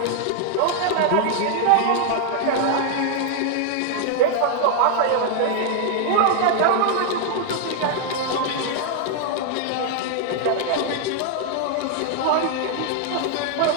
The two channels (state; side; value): different; both; correlation 0.00